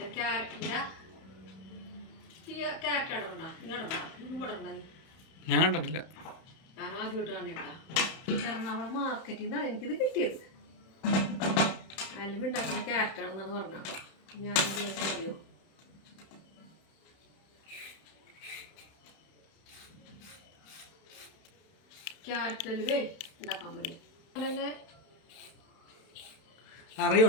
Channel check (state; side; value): late; right; 31 ms